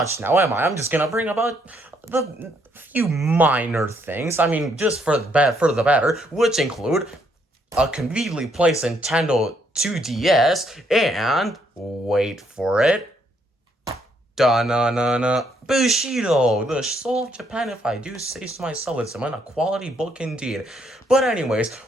now, am I? I'm just gonna bring about the few minor things. I mean, just for the better, which include a conveniently placed Nintendo 2DS and, wait for it, da-na-na-na, Bushido, the soul of Japan, if I do say so myself. It's a quality book indeed. But anyways,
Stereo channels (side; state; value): both; normal; correlation 0.71